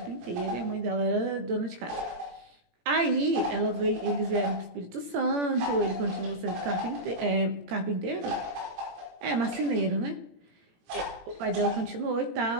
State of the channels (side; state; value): left; late; 17 ms